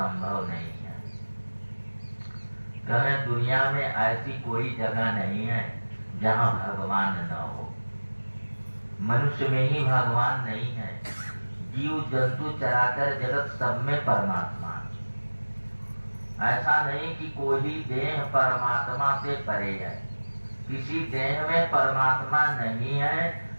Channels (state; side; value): inverted; both; correlation -1.00